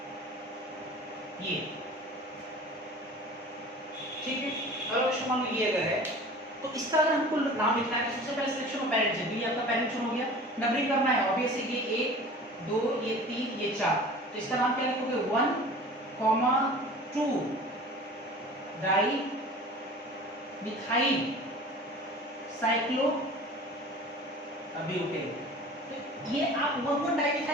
ये, ठीक है, अगला क्वेश्चन मान लो ये अगर है तो इसका अगर हमको नाम लिखना है, सबसे पहले सिलेक्शन ऑफ पेरेंट्स है, ये आपका पेरेंट चुन हो गया, नंबरिंग करना है ऑब्वियसली, ये 1 2 ये 3 ये 4, तो इसका नाम क्या लिखोगे, 1, 2 डाई मिथाइल साइक्लोब्यूटेन। तो ये आप 1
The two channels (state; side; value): normal; both; correlation 0.41